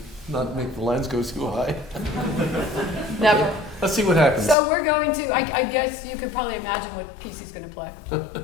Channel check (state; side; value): drops out; right; at 4.5 s